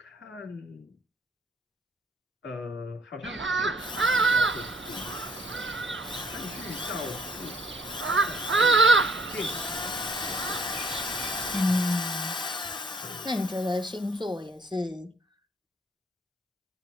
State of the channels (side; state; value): both; normal; correlation 0.61